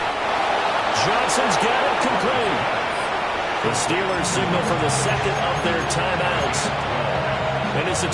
Johnson's got it complete. The Steelers signal for the second of their timeouts. And as the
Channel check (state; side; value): identical; both; correlation 1.00